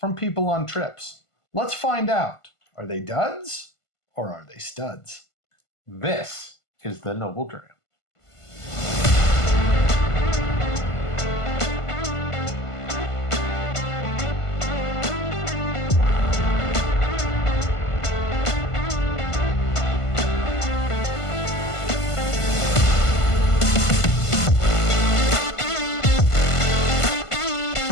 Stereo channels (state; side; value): late; right; 1.5 ms